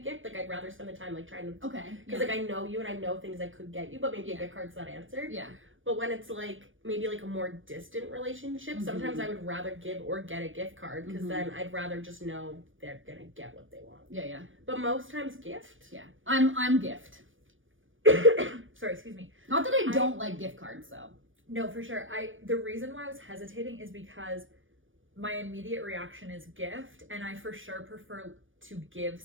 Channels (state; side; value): late; left; 0.57 ms